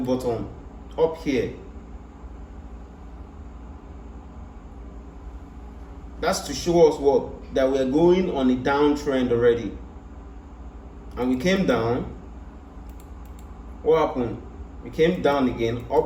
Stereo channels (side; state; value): both; identical; correlation 1.00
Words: bottom up here. That's to show us what? That we are going on a downtrend already. And we came down. What happened? We came down again,